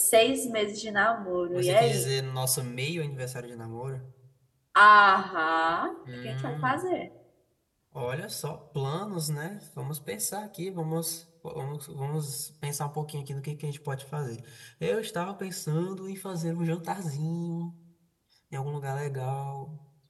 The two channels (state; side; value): identical; both; correlation 1.00